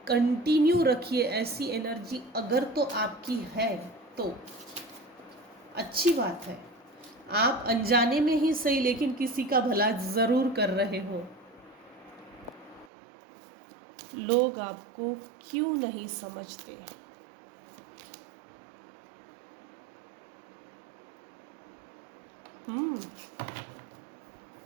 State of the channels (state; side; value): drops out; left; at 12.9 s